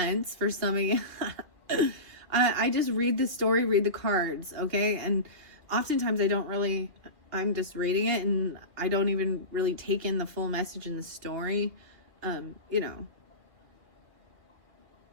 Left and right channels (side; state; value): left; late; 2.4 ms